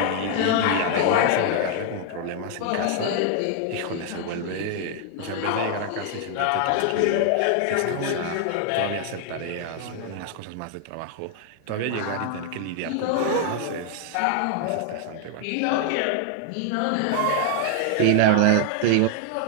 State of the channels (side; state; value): both; different; correlation 0.00